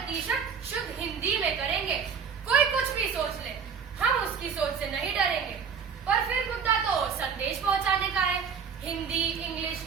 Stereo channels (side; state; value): left; quieter; 6.4 dB